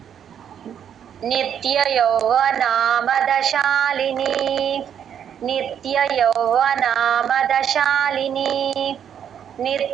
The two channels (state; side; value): quieter; left; 8.8 dB